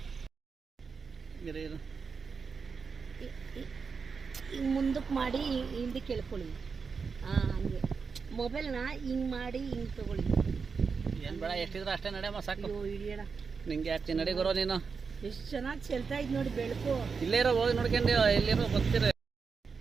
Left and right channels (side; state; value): left; quieter; 5.3 dB